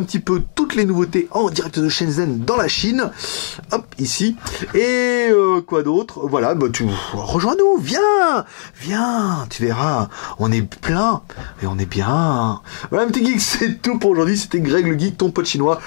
petit peu toutes les nouveautés en direct de Shenzhen dans la Chine. Hop, ici. Et quoi d'autre? Voilà, bah tu rejoins-nous, viens, tu verras, on est plein et on est bien. Voilà, petit geek, c'est tout pour aujourd'hui. C'était Greg le geek, ton pote chinois,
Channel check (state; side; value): silent; right; 68 dB below the other